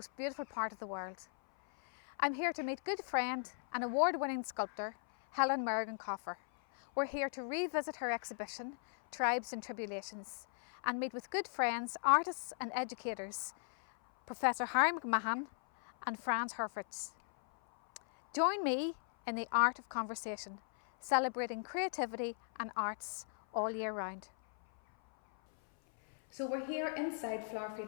beautiful part of the world. I'm here to meet good friend and award-winning sculptor Helen Merrigan Colfer. We're here to revisit her exhibition, Tribes and Tribulations, and meet with good friends, artists and educators, Prof.Harry Mahon and Franz Hoeritzauer. Join me in the Art of Conversation, celebrating creativity and arts all year round. So we're here inside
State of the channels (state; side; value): silent; right; 53 dB below the other